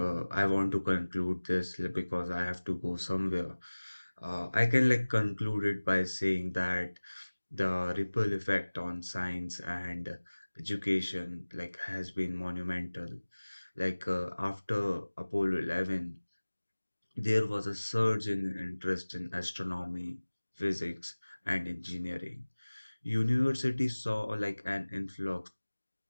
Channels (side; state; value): both; inverted; correlation -1.00